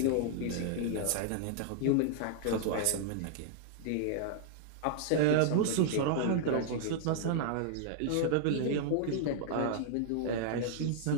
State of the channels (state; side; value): different; both; correlation -0.01